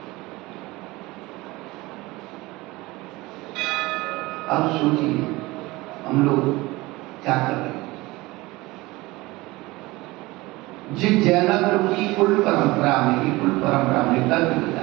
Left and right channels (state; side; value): quieter; left; 21.0 dB